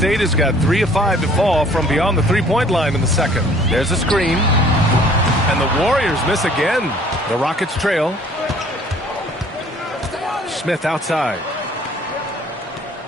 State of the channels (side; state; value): both; normal; correlation 0.55